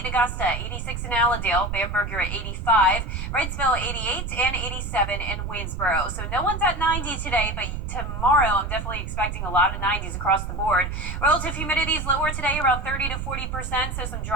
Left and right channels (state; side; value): noise; right; rumble, 5 dB below the sound